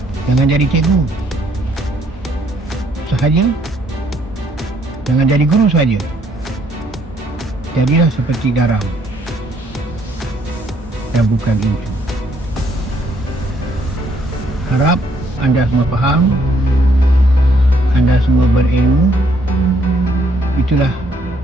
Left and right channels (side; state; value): both; normal; correlation 0.68